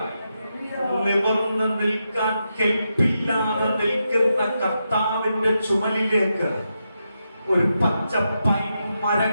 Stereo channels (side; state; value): both; inverted; correlation -0.86